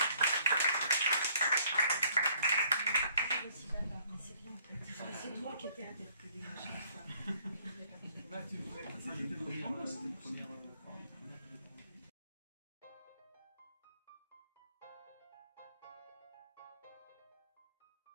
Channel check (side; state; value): both; inverted; correlation -0.63